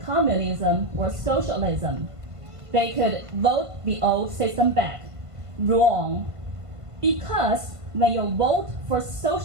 communism or socialism, they could vote the old system back. Wrong. Because when you vote for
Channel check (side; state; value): left; late; 1.5 ms